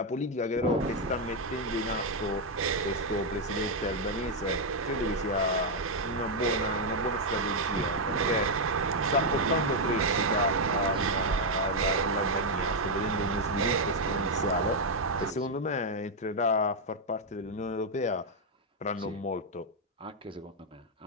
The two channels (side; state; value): both; normal; correlation 0.00